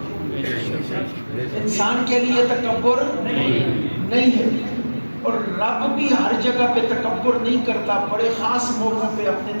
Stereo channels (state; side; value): inverted; both; correlation -1.00